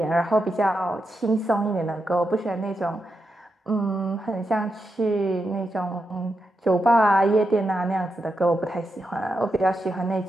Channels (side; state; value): both; normal; correlation 0.86